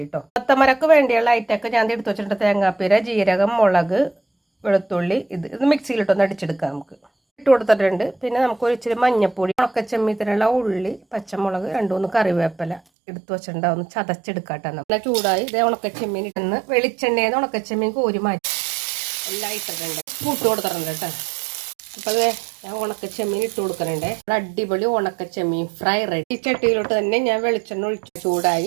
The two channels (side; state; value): left; drops out; at 12.8 s